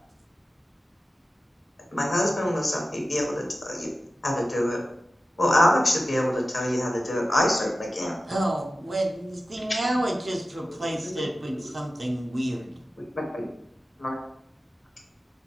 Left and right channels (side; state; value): both; normal; correlation 0.95